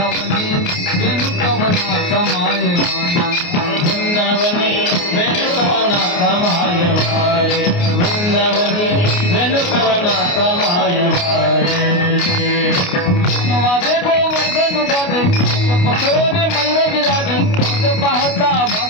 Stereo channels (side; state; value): right; late; 29 ms